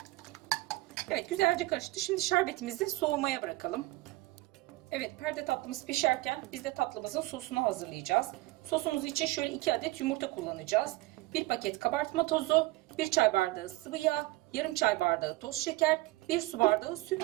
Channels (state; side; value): quieter; left; 20.1 dB